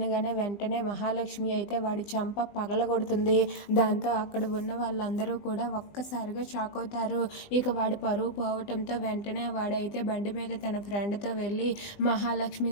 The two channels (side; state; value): right; late; 20 ms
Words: వెంటనే మహాలక్ష్మి అయితే వాడి చంప పగలగొడుతుంది. దాంతో అక్కడ ఉన్న వాళ్ళందరూ కూడా ఒక్కసారిగా షాక్ అవుతారు. ఇక వాడి పరువు పోవటంతో వెంటనే వాడైతే బండి మీద తన ఫ్రెండ్తో వెళ్ళి మహాలక్ష్మి